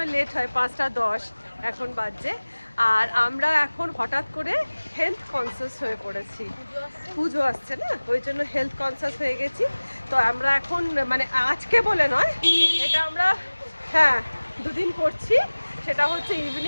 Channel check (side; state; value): both; inverted; correlation -1.00